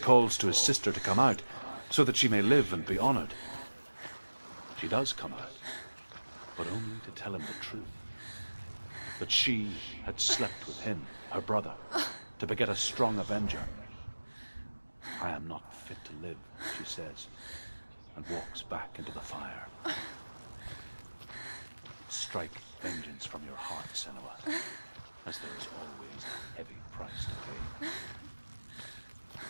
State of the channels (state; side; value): inverted; both; correlation -1.00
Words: calls to his sister to come out so that she may live and be honored. She does come out, but only to tell him the truth. That she had slept with him, her brother, to beget a strong avenger. I am not fit to live, she says, and walks back into the fire. Strike vengeance from your heart, Senua, as there is always a heavy price to pay.